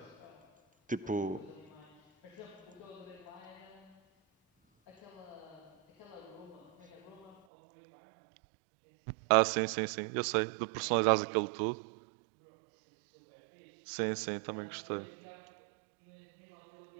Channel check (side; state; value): left; drops out; at 7.4 s